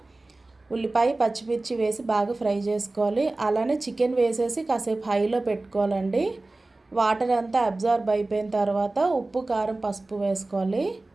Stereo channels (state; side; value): quieter; left; 3.0 dB